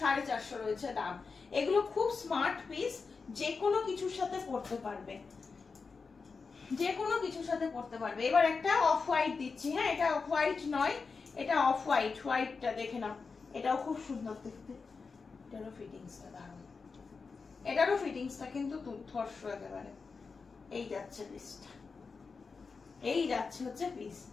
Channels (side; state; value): right; quieter; 4.8 dB